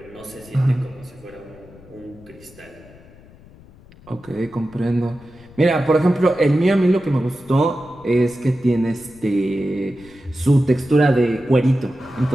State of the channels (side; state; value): left; noise; rumble, 23 dB below the sound